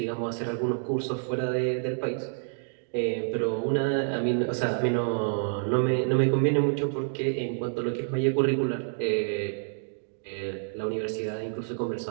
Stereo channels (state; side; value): silent; left; digital silence